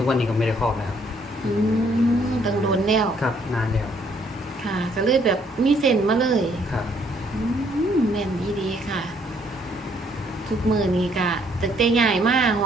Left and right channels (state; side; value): normal; both; correlation 0.67